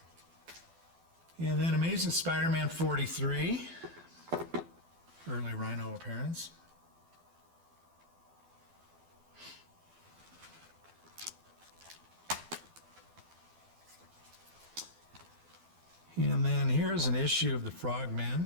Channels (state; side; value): late; left; 12 ms